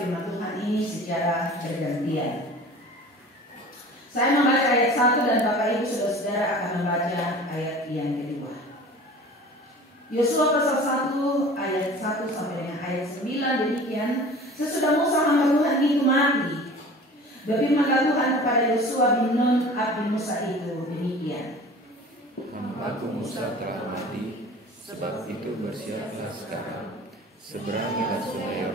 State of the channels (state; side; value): normal; both; correlation 0.41